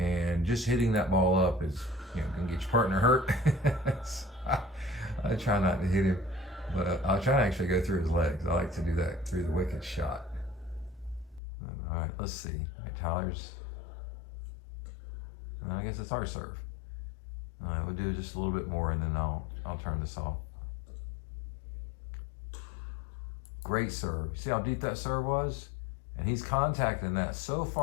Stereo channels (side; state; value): right; drops out; at 11.4 s